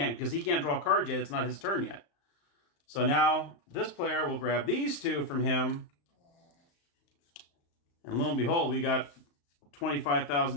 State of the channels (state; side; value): late; right; 35 ms